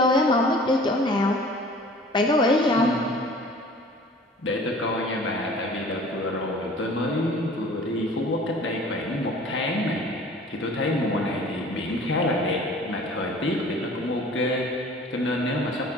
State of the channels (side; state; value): both; normal; correlation 0.47